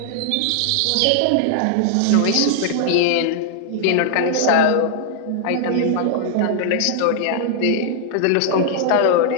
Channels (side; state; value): both; different; correlation -0.01